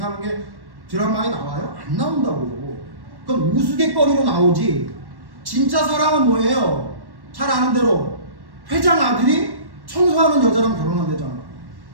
게 드라마에 나와요? 안 나온다고요. 그건 우스갯거리로 나오지. 진짜 사랑은 뭐예요? 잘 아는 대로 회장 아들이 청소하는 여자랑 결혼한대잖아.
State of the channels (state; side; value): late; left; 1.1 ms